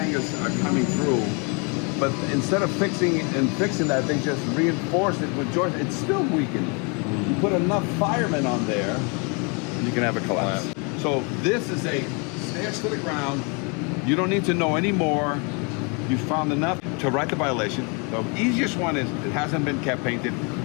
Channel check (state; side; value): quieter; right; 33.2 dB